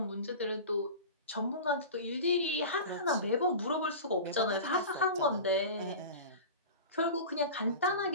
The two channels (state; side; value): inverted; both; correlation -0.32